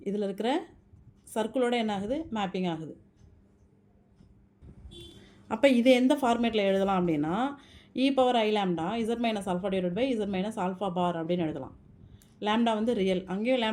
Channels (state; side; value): identical; both; correlation 1.00